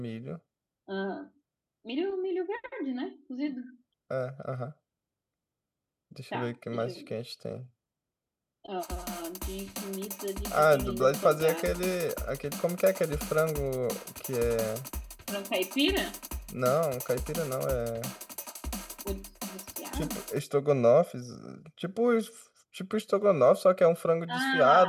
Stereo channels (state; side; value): identical; both; correlation 1.00